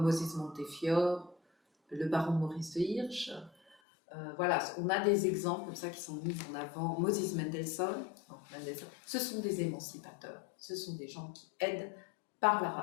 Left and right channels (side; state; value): right; drops out; at 3.8 s